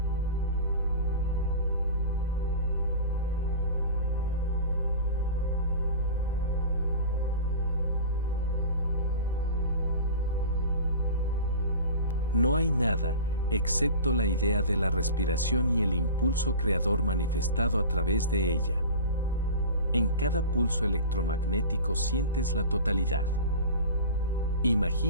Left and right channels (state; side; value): inverted; both; correlation -0.34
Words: No hay nada, excepto la idea de la respiración y el impulso creador manifestado a través de ella. En cada pulso electromagnético sientes la totalidad.